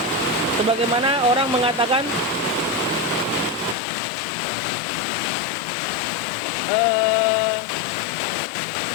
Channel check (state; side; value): drops out; right; at 3.8 s